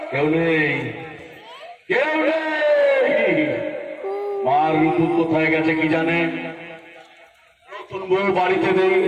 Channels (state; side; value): identical; both; correlation 1.00